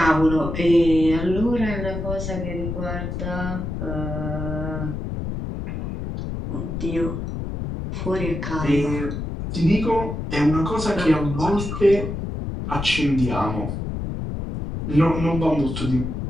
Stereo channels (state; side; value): noise; left; rumble, 5 dB below the sound